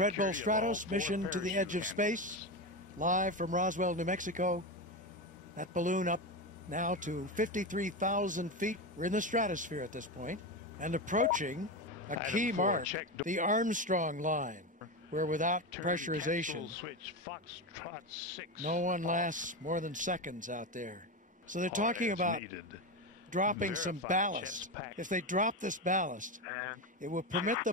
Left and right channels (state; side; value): normal; both; correlation 0.17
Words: Bull security of all Stratos, 4 Mission to the Edge of parachute Space, live from Roswell, New Mexico. That balloon up now to 53,000 feet. We're in the stratosphere at this point and approaching a Item key 4, mark, check the Armstrong line, where without Turn pressurization, capsule switch Foxtrot 6. no one lasts more than seconds out there. So they're talking as about needed. dropping some Verify ballast. chest pack. If they drop this ballast, And it will permit the